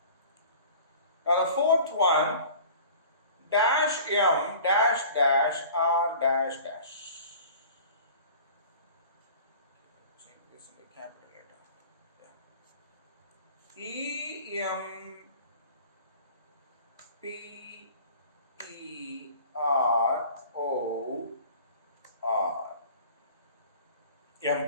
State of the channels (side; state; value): both; inverted; correlation -0.44